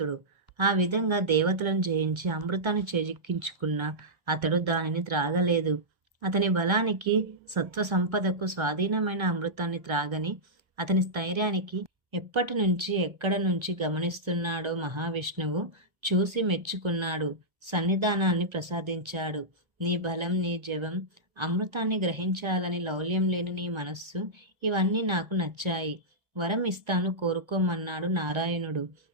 ఆ విధంగా దేవతలను జయించి అమృతాన్ని చేజిక్కించుకున్న అతడు దానిని త్రాగలేదు. అతని బలానికి, సత్వ సంపదకు స్వాధీనమైన అమృతాన్ని త్రాగని అతని స్థైర్యానికి ఎప్పటి నుంచి ఎక్కడ నుంచి గమనిస్తున్నాడో మహావిష్ణువు చూసి మెచ్చుకున్నాడు. సన్నిధానాన్ని ప్రసాదించాడు. నీ బలం, నీ జవం, అమృతాన్ని గ్రహించాలని లౌల్యం లేని నీ మనస్సు, ఇవన్నీ నాకు నచ్చాయి. వరం ఇస్తాను కోరుకోమన్నాడు నారాయణుడు.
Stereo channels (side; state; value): left; late; 1.3 ms